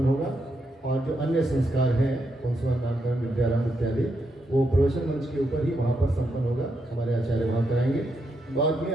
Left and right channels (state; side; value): normal; both; correlation 0.81